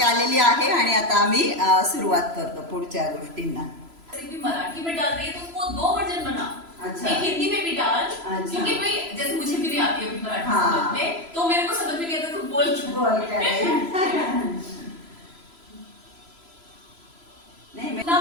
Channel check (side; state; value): left; late; 3.0 ms